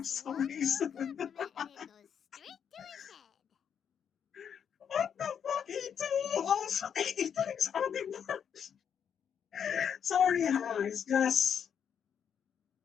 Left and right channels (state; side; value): quieter; right; 7.9 dB